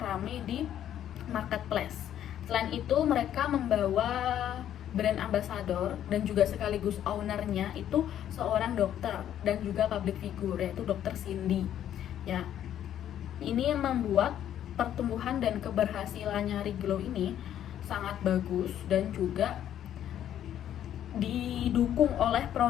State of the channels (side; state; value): right; quieter; 10.8 dB